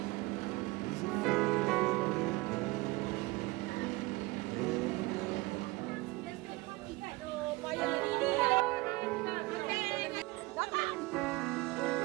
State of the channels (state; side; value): quieter; left; 22.6 dB